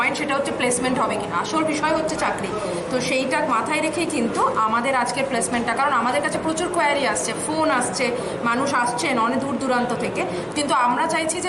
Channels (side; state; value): both; identical; correlation 1.00